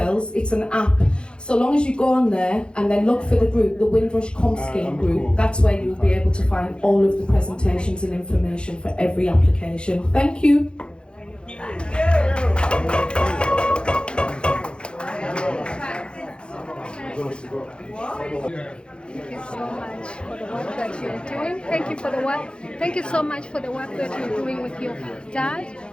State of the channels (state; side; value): late; right; 0.053 ms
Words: It's an app. So long as you go on there and then look for the group, the Windrush Scheme group, that's where you'll be able to find all of the presentations and information for every application. Thank you. Thank you so much for the work that you're doing. Thank you for the work. Thank you so much for the work that you're doing with your dad.